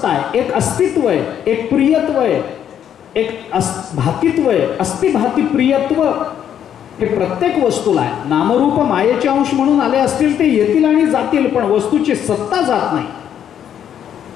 आहे, एक अस्तित्व आहे, एक प्रियत्व आहे, एक भातित्व आहे. अस्तिभाती प्रियत्व हे प्रत्येक वस्तूला आहे. नामरूप मायेचे अंश म्हणून आले असतील ते येतील आणि जातील, पण वस्तूची सत्ता जात नाही.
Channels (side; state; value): right; quieter; 9.5 dB